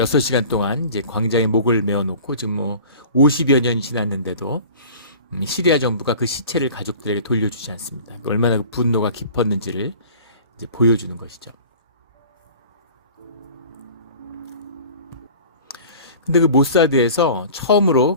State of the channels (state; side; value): inverted; both; correlation -0.43